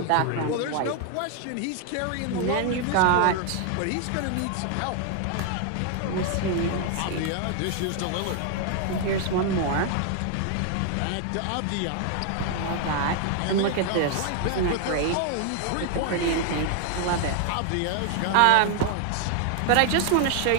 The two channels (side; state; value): both; different; correlation 0.00